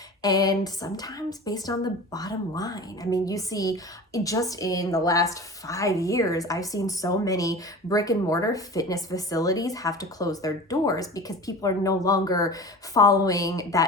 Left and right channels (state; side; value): normal; both; correlation 0.35